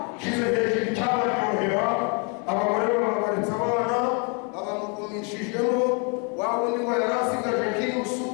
shize hejuru icyabaryohera, abagore bababaritse abana, abamugumishijemo, wa wundi ngo yari asigaje nk'inusu,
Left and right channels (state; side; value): quieter; right; 35.7 dB